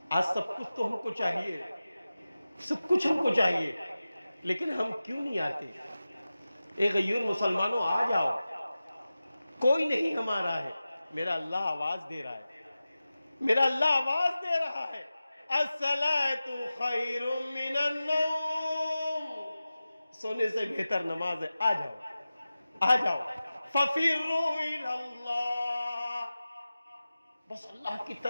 آج سب کچھ تو ہم کو چاہیے، سب کچھ ہم کو چاہیے، لیکن ہم کیوں نہیں آتے؟ اے غیور مسلمانوں، آ جاؤ، کوئی نہیں ہمارا ہے. میرا اللہ آواز دے رہا ہے، میرا اللہ آواز دے رہا ہے، الصلاۃ خیر من النوم، سونے سے بہتر نماز ہے. آ جاؤ، آ جاؤ، ففروا الی اللہ، بس اللہ کی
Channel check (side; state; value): both; inverted; correlation -0.95